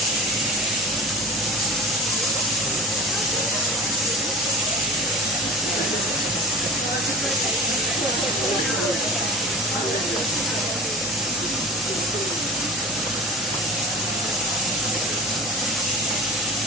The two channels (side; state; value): both; normal; correlation 0.33